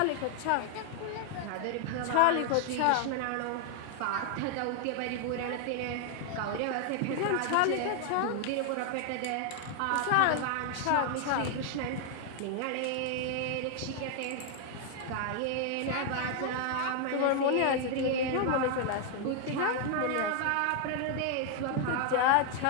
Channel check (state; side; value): different; both; correlation 0.00